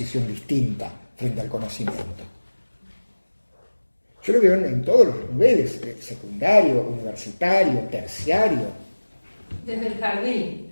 distinta frente al conocimiento. Yo lo veo en todos los niveles, secundario, universitario, terciario. Desde el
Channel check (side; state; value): both; inverted; correlation -1.00